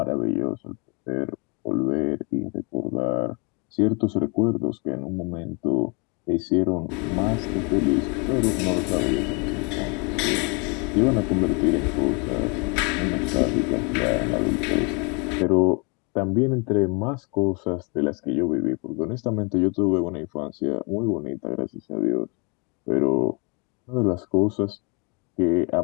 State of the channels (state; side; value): quieter; right; 32.7 dB